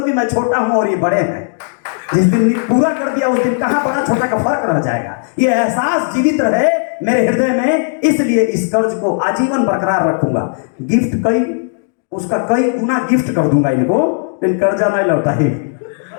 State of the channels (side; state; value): right; silent; digital silence